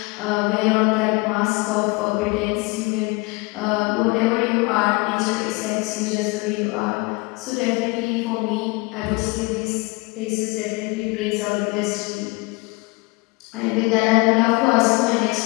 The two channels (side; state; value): right; quieter; 26.0 dB